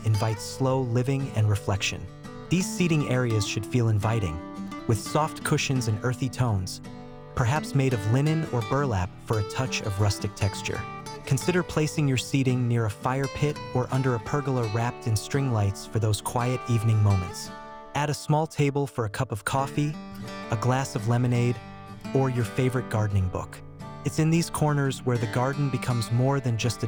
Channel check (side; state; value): both; identical; correlation 1.00